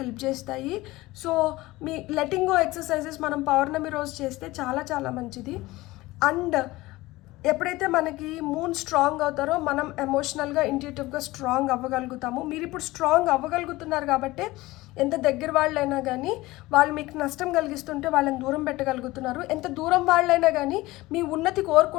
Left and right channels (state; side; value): quieter; right; 19.3 dB